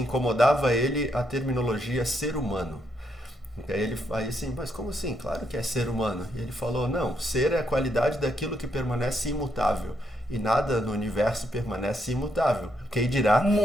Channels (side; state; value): both; normal; correlation 0.77